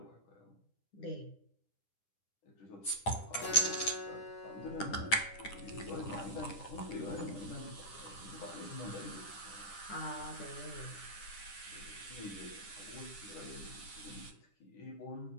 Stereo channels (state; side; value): late; right; 10 ms